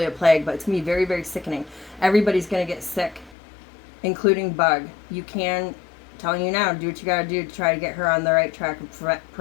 a plague, but it's gonna be very, very sickening. Everybody's gonna get sick, including Bug. You can, telling you now, do what you gotta do to try to get her on the right track of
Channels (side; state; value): right; drops out; at 3.4 s